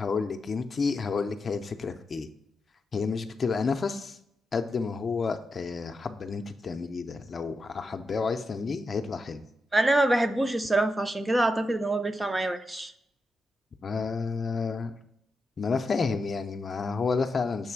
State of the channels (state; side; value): normal; both; correlation 0.87